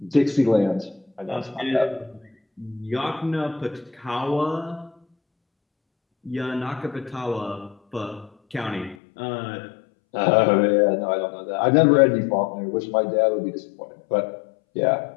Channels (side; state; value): right; drops out; at 9.0 s